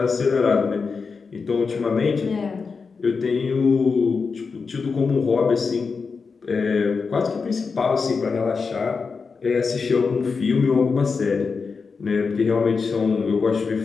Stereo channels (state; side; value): quieter; right; 5.0 dB